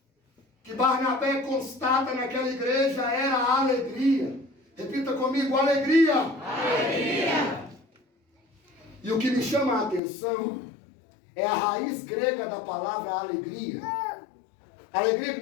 que Barnabé constata naquela igreja era a alegria. Repita comigo, alegria. Alegria. E o que me chama a atenção é a raiz grega da palavra alegria. Alegria que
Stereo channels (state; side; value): drops out; right; at 10.0 s